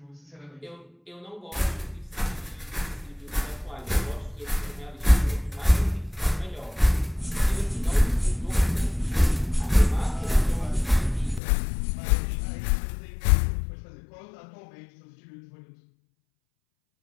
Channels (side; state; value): right; drops out; at 11.4 s